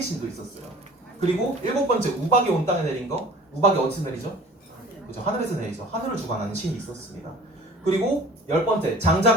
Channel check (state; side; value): normal; both; correlation 0.46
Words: 신도 있었어요. 그리고 7번째 우박이 온 땅에 내린 거. 우박이 어디서 내리죠? 그죠? 하늘에서 내리죠. 하늘을 주관하는 신이 있었습니다. 그리고 10번째